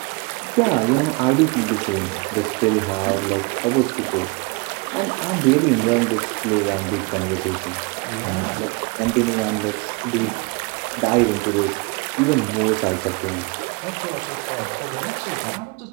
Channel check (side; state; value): left; quieter; 28.1 dB